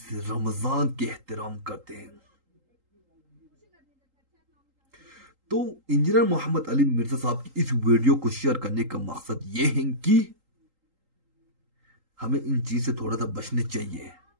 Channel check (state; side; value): late; left; 3.8 ms